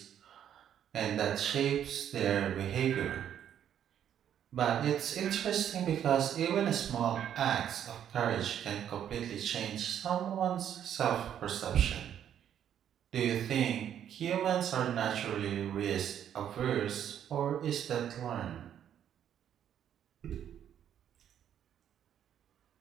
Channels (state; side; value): quieter; left; 9.7 dB